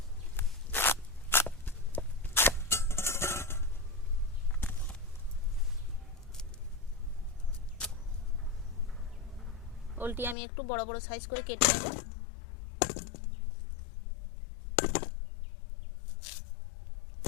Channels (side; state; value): right; drops out; at 10.4 s